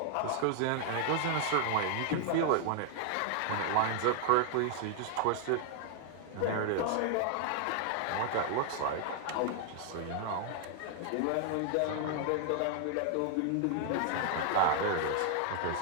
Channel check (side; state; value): both; different; correlation 0.00